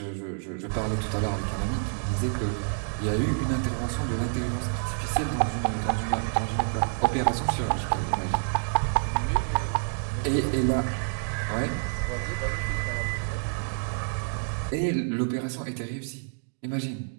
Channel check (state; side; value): silent; left; 59 dB below the other